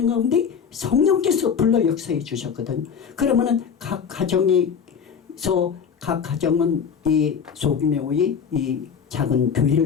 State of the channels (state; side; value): quieter; right; 6.9 dB